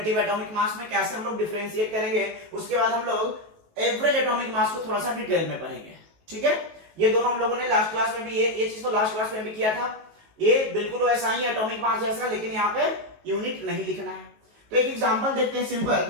एटॉमिक मास में कैसे हम लोग डिफरेंशिएट करेंगे। उसके बाद हम लोग एवरेज एटॉमिक मास को थोड़ा सा डिटेल में पढ़ेंगे। ठीक है, ये दोनों हम लोगों ने लास्ट क्लास में भी ये चीज तो लास्ट क्लास में भी किया था। ये बिल्कुल वैसा ही एटॉमिक मास जैसा, लेकिन यहाँ पे यूनिट नहीं लिखना है। तो एक एग्जांपल देखते हैं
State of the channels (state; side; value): late; left; 19 ms